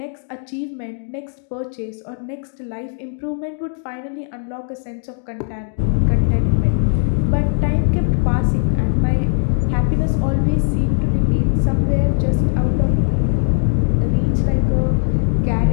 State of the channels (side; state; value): right; silent; 67 dB below the other